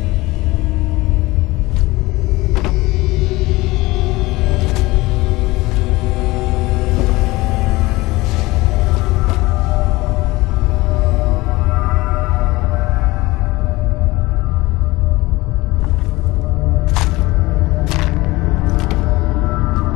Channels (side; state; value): right; quieter; 20.6 dB